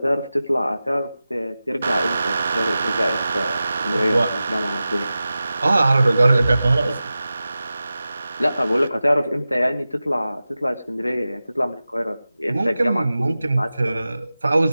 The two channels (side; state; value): both; inverted; correlation -0.95